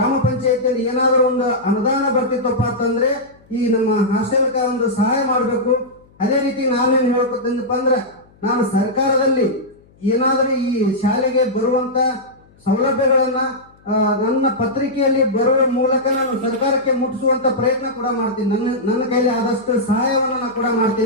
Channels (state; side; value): noise; left; hum, 30 dB below the sound